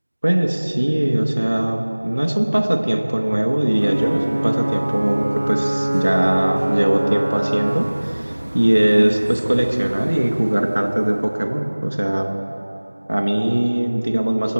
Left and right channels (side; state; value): both; inverted; correlation -1.00